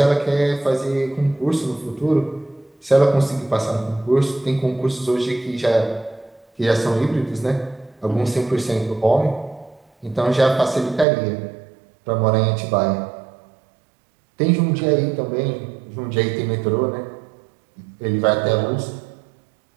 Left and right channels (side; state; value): left; drops out; at 11.1 s